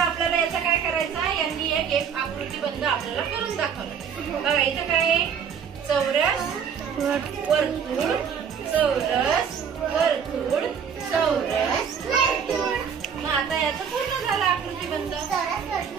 याचा काय करायचा? यांनी एक आकृतीबंध आपल्याला करून दाखवलं. बघा इथं काय आहे? चौरस वर्तुळ, चौरस वर्तुळ, चौरस वर्तुळ. मग आता याचं पूर्ण झालं आकृतीबंध.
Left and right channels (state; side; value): quieter; left; 7.3 dB